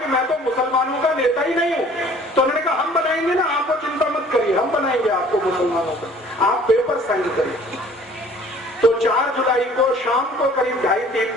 मैं तो मुसलमानों का नेता ही नहीं हूं। तो उन्होंने कहा हम बनाएंगे ना, आपको चिंता मत करिए, हम बनाएंगे आपको मुसलमानों का, आप पेपर साइन करिए। तो 4 जुलाई को शाम को करीब 2:30-3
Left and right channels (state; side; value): normal; both; correlation 0.52